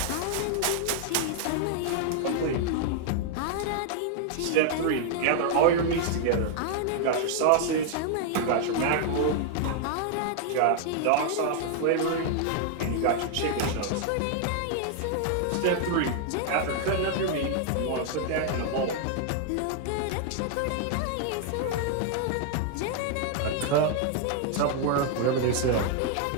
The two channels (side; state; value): both; different; correlation 0.00